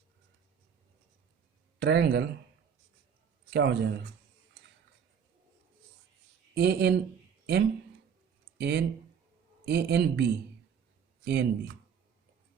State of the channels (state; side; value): quieter; left; 7.3 dB